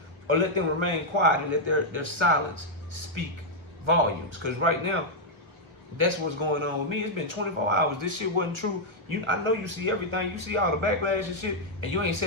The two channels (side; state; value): left; late; 1.1 ms